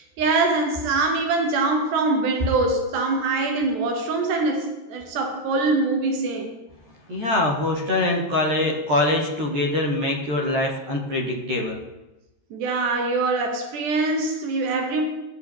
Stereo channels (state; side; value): late; left; 13 ms